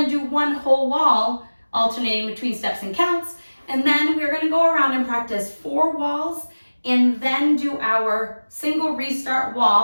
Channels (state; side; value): inverted; both; correlation -1.00